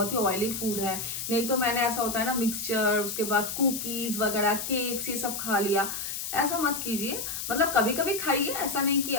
ही ऑयली फूड है। नहीं तो मैंने ऐसा होता है ना मिक्सचर, उसके बाद कुकीज वगैरह, केक्स, ये सब खा लिया। ऐसा मत कीजिए। मतलब कभी कभी खाइए, ऐसा नहीं कि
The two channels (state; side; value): noise; left; hiss, 5 dB below the sound